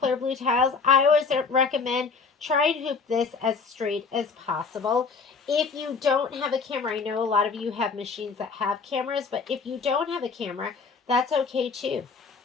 blue tiles. I always recommend try and hoop this as straight as possible. If you don't have a camera, I know a lot of you have machines that have cameras, but if you don't have a camera, that's okay too.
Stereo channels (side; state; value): right; quieter; 4.9 dB